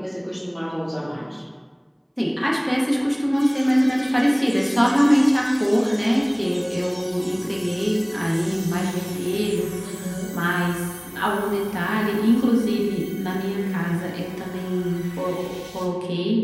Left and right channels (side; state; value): both; identical; correlation 1.00